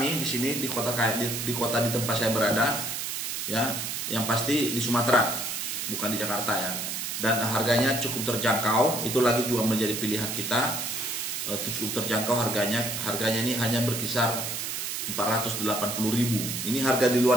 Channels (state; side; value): noise; right; hiss, 3 dB below the sound